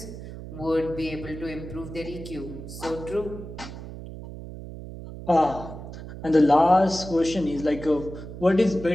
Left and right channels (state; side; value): noise; right; hum, 11 dB below the sound